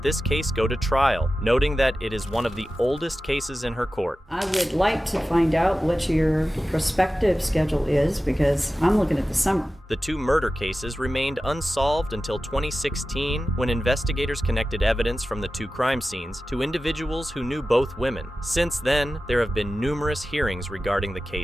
this case go to trial, noting that it is one of the oldest cases in her court. I would like to find out what your prospective schedule is, because I'm looking at the summer. The 2 murder cases remained unsolved until 2016, when investigators connected evidence from the 2 crime scenes to individuals who knew both women. Since then, there have been numerous hearings regarding the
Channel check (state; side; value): normal; both; correlation 0.94